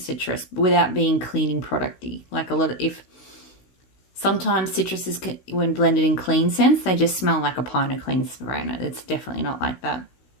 without being cleaning producty. Like a lot of, sometimes citruses, when blended in clean scents, they just smell like a pint of clean spray. It's definitely not like that.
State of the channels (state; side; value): late; right; 16 ms